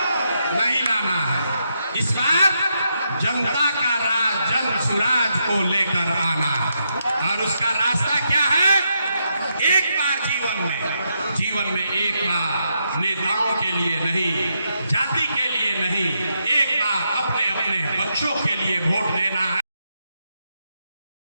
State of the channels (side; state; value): both; inverted; correlation -0.81